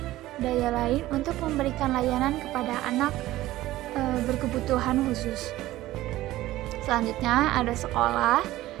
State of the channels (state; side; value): quieter; left; 16.1 dB